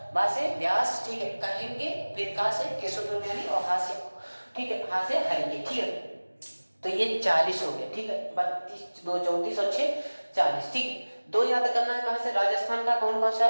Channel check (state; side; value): inverted; both; correlation -1.00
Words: बा से व्यास, ठीक है, कहेंगे, फिर का से केशवयानी, और हा से, ठीक है, हा से हरेंगे, ठीक है। तो ये 40 हो गया, ठीक है, 32 2 34 और 6 40, ठीक है। 2 याद करना है कहाँ से, राजस्थान का कौन सा,